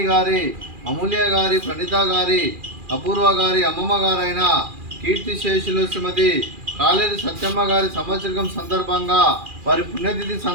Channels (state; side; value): late; left; 2.4 ms